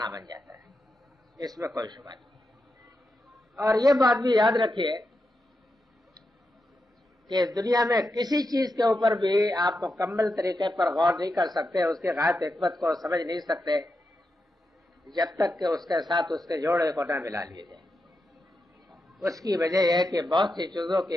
بن جاتا ہے، اس میں کوئی شبہ نہیں۔ اور یہ بات بھی یاد رکھیے کہ دنیا میں کسی چیز کے اوپر بھی آپ مکمل طریقے پر غور نہیں کر سکتے، اس کی غائب حکمت کو سمجھ نہیں سکتے جب تک کہ اس کے ساتھ اس کے جوڑے کو نہ ملا لیے جائے۔ اس کی وجہ یہ ہے کہ بہت سی چیزوں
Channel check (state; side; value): normal; both; correlation 0.87